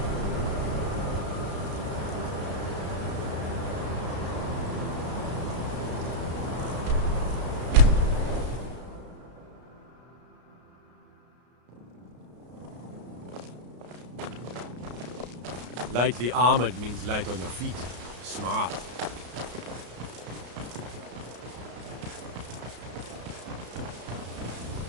Lightly armored means light on your feet. Smart.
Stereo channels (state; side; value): late; left; 33 ms